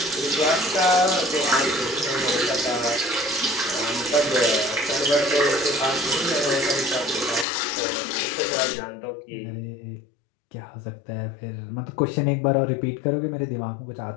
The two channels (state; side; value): drops out; right; at 7.5 s